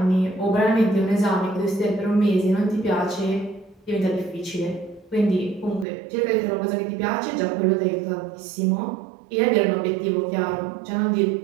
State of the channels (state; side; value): drops out; left; at 5.9 s